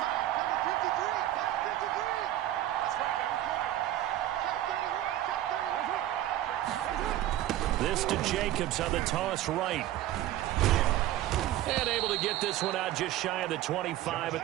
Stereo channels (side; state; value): left; quieter; 13.8 dB